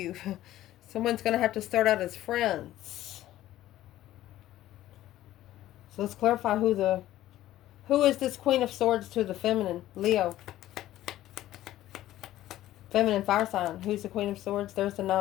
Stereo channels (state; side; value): quieter; right; 14.2 dB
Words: Someone's going to have to start out as friends. So let's clarify who is this Queen of Swords to the feminine? Leo. Feminine fire sign. Who's the Queen of Swords? There's the